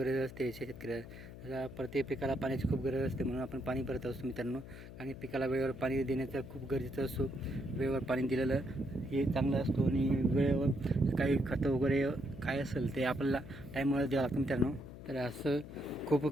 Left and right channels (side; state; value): left; noise; hum, 14 dB below the sound